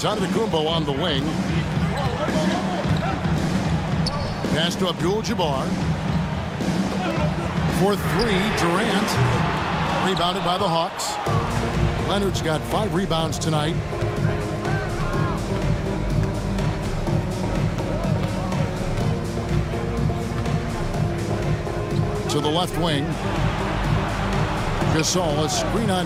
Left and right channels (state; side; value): identical; both; correlation 1.00